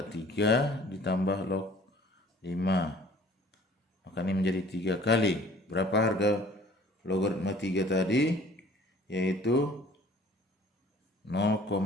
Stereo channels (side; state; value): both; normal; correlation 0.52